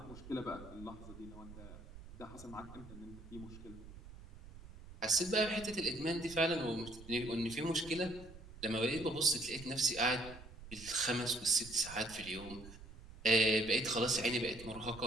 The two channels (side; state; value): right; noise; rumble, 16 dB below the sound